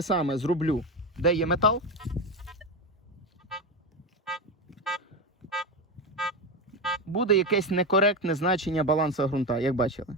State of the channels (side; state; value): both; normal; correlation 0.16